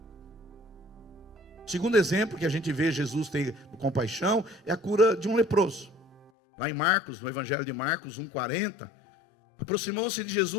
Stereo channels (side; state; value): right; drops out; at 6.3 s